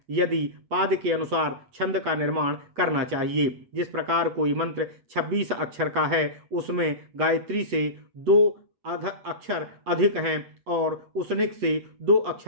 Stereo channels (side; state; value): left; late; 8.1 ms